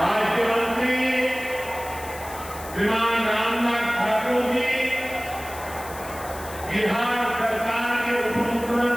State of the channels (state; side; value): noise; left; hiss, 15 dB below the sound